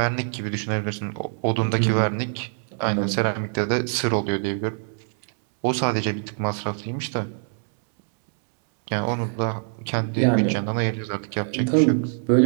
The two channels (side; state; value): left; silent; 62 dB below the other